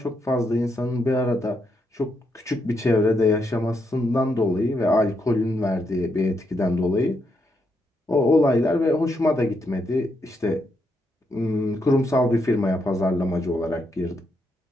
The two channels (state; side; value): normal; both; correlation 0.79